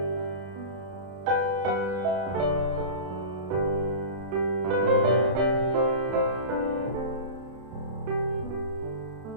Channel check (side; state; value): left; late; 32 ms